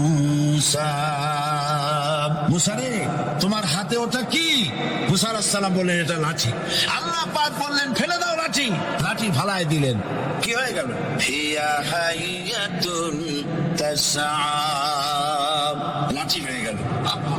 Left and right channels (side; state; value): both; identical; correlation 1.00